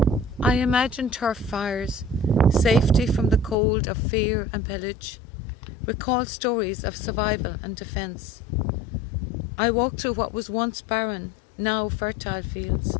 I imagine turf fires, safety from the cold of fear and pillage, recall stories of survival and defence. I walk through what was once barren, now fertile fields.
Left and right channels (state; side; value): drops out; right; at 3.6 s